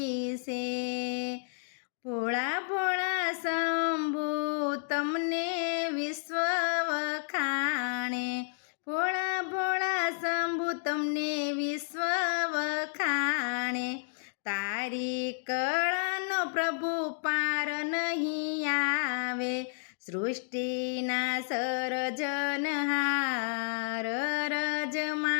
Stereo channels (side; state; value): right; silent; digital silence